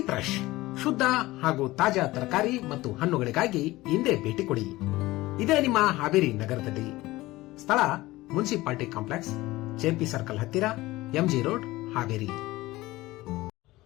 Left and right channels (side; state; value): right; quieter; 18.6 dB